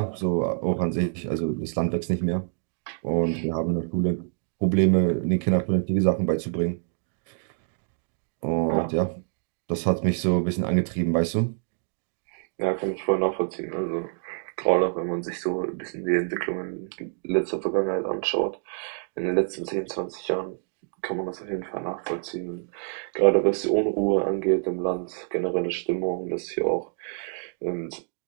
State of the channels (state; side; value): silent; left; 60 dB below the other